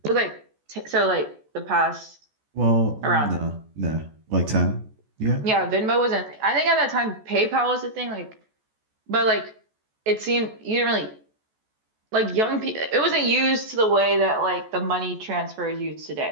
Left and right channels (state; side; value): late; left; 14 ms